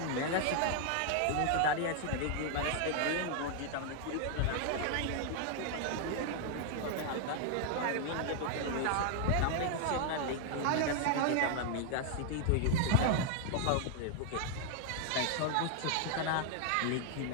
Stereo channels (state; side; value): different; both; correlation 0.00